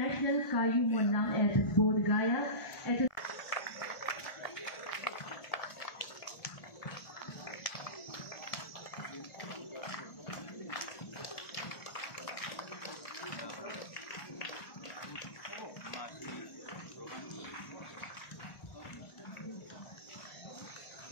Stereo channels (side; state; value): right; late; 1.4 ms